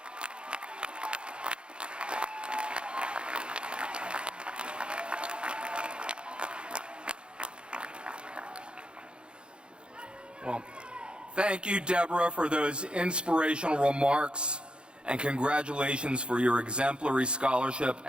Well, thank you, Deborah, for those inspirational remarks, and congratulations for your exemplary scholarship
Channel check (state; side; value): late; left; 0.054 ms